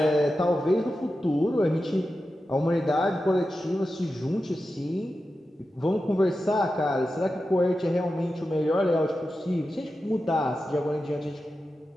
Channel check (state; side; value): normal; both; correlation 0.92